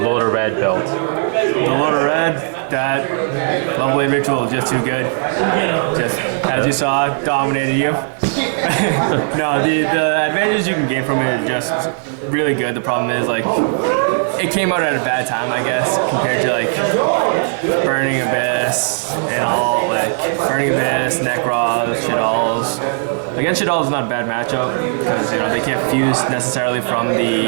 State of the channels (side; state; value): left; silent; digital silence